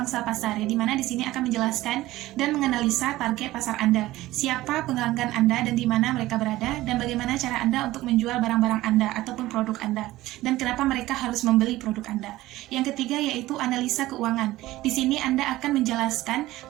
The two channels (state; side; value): quieter; left; 16.8 dB